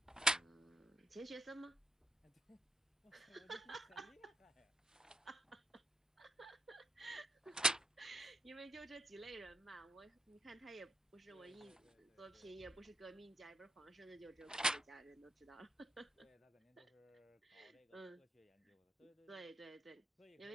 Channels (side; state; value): both; normal; correlation 0.78